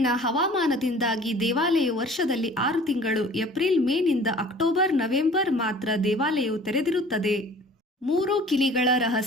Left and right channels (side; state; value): both; normal; correlation 0.48